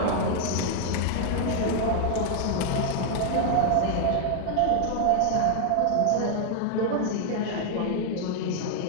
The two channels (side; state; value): both; different; correlation 0.00